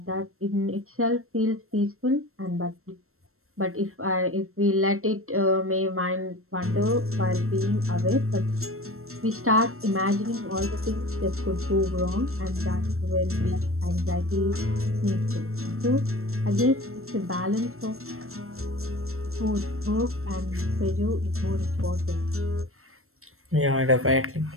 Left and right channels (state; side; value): late; left; 0.62 ms